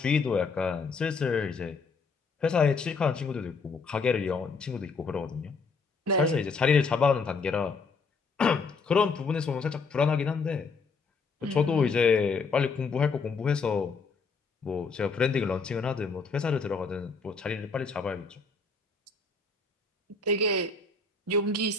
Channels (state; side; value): quieter; right; 4.5 dB